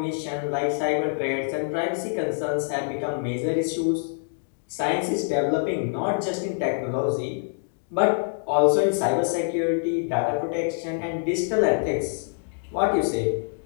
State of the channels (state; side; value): silent; right; digital silence